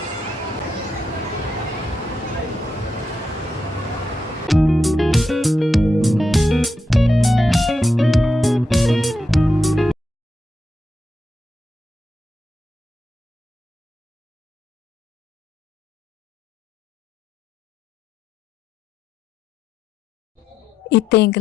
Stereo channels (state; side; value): normal; both; correlation 0.84